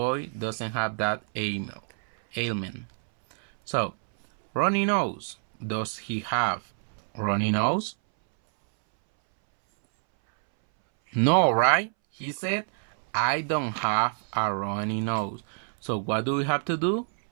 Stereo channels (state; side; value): silent; left; 60 dB below the other